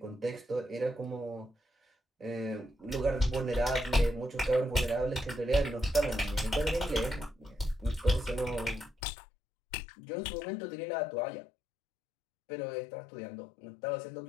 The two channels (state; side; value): drops out; right; at 9.0 s